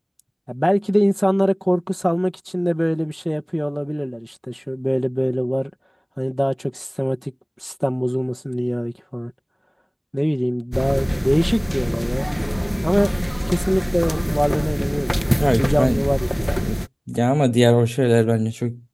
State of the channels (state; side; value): identical; both; correlation 1.00